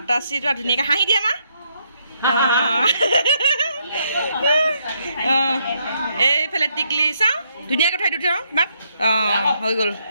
ধুনীয়াকৈ হাঁহি দিয়ে আমাৰ এইফালে টিকলি চাওঁ ধুনীয়াকৈ থৈ দিওঁ মাক হৈ গ'ল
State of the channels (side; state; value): both; inverted; correlation -0.74